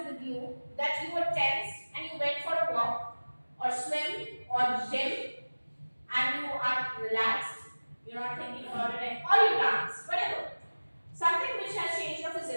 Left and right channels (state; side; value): inverted; both; correlation -1.00